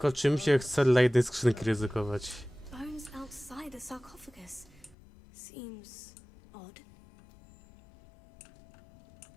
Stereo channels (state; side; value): drops out; right; at 5.0 s